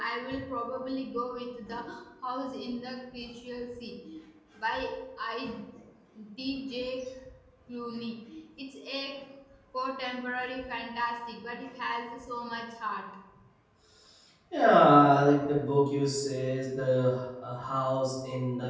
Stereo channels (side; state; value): both; identical; correlation 1.00